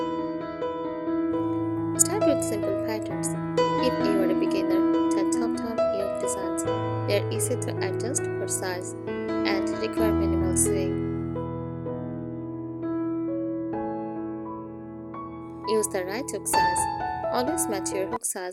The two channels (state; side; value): identical; both; correlation 1.00